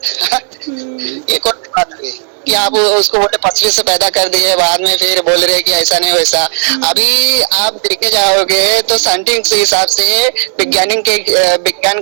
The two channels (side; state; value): left; silent; digital silence